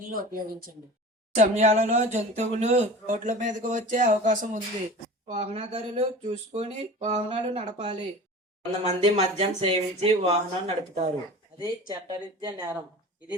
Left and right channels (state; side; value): normal; both; correlation 0.37